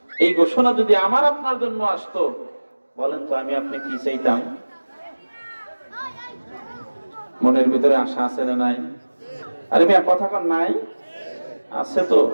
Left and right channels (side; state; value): both; inverted; correlation -1.00